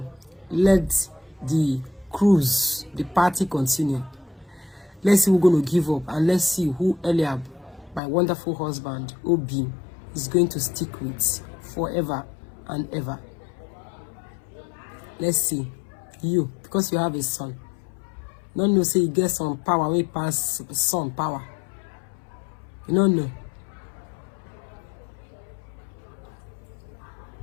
let the cruise, the party continue. Let's see who's going to give up, and let's see who Eliab, my wonderful husband, Obi, is going to stick with forever and ever. Let's see. You, because you have a son. Don't know, say you get some power, we pass son power. You don't know.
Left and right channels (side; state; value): right; drops out; at 8.0 s